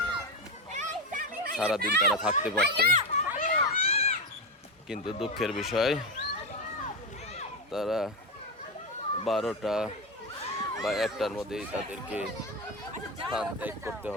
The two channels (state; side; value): normal; both; correlation 0.14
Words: সারাদিন তারা থাকতে পারত। কিন্তু দুঃখের বিষয়, তারা 12টা বা 1টার মধ্যেই তাদেরকে স্থান ত্যাগ করতে